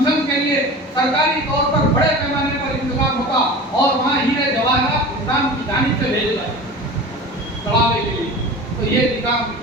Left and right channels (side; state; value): both; normal; correlation 0.35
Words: کے لیے سرکاری طور پر بڑے پیمانے پر انتظام ہوتا اور وہاں ہیرے جواہرات نظام کی جانب سے بھیجے جاتے چڑھاوے کے لیے۔ تو یہ نظام